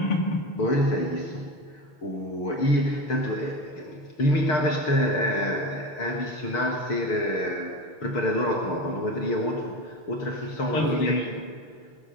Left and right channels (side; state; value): right; late; 6.6 ms